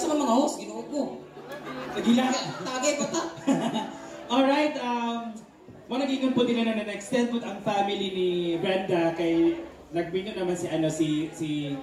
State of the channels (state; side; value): identical; both; correlation 1.00